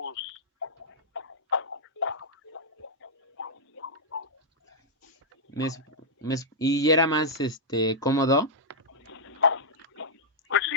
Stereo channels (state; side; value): normal; both; correlation -0.07